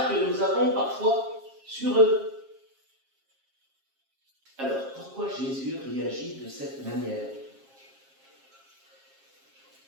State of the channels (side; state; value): left; late; 7.4 ms